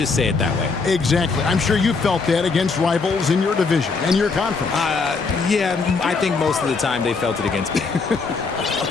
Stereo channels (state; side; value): quieter; right; 4.5 dB